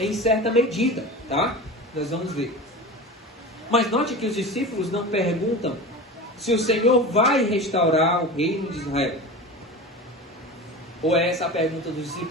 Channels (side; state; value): both; normal; correlation 0.30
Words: certa medida, tá? Nós vamos ver. Mas note que os discípulos não perguntam se o Senhor vai restaurar o reino de Israel. Ou é essa a pergunta dos